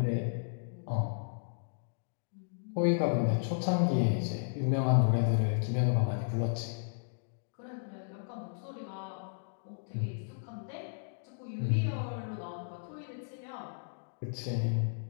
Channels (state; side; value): silent; right; digital silence